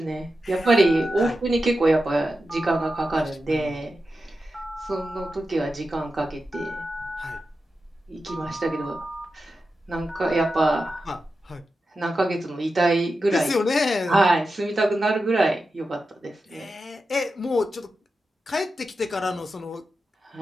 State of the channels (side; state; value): both; normal; correlation 0.90